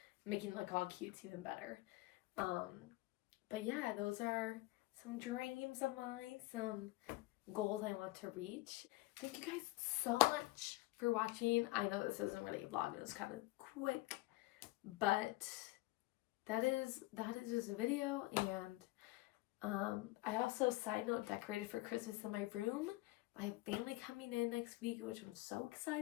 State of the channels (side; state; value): right; quieter; 19.5 dB